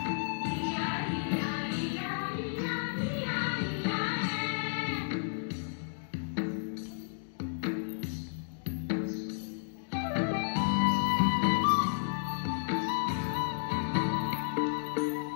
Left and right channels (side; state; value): right; silent; digital silence